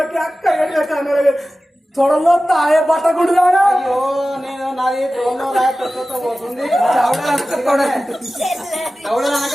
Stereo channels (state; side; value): normal; both; correlation 0.95